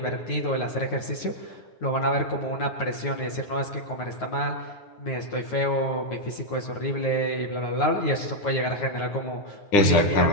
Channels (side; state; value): right; late; 9.4 ms